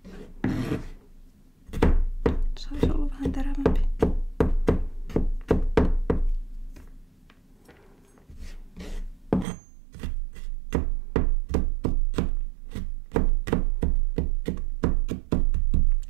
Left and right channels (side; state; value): left; drops out; at 9.5 s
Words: Saisi olla vähän terävämpi.